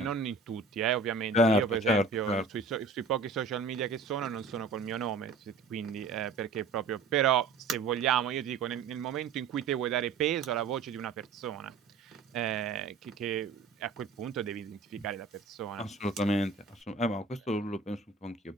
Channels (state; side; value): quieter; left; 4.3 dB